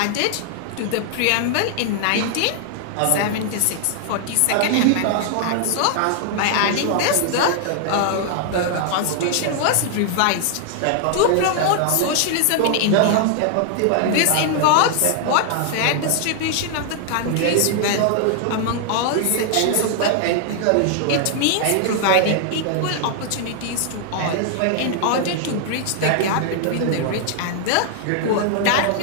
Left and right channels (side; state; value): both; different; correlation 0.00